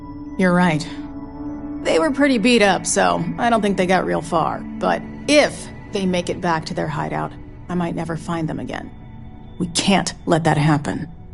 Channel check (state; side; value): identical; both; correlation 1.00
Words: You're right. They were pretty beat up, so I don't think they got real far. But if they make it back to their hideout, I might never find them again. We can't let that happen.